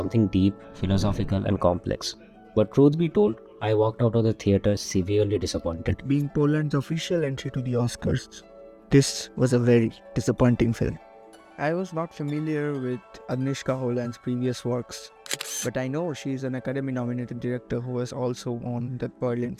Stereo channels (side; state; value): both; identical; correlation 1.00